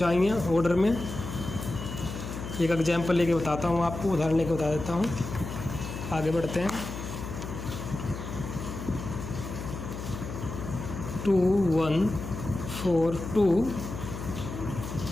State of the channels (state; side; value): noise; left; hum, 8 dB below the sound